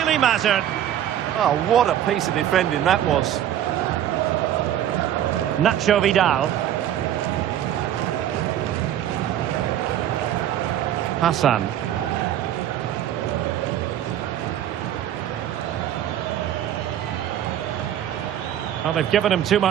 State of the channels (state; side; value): quieter; left; 11.1 dB